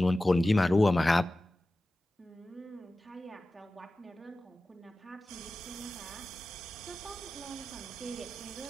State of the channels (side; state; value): both; normal; correlation 0.95